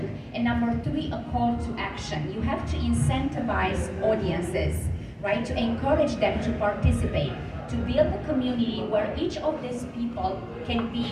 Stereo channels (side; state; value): both; identical; correlation 1.00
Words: and number three, a call to action. You have to incentivize audiences, right, to encourage them to participate, to build a community where each of these people can be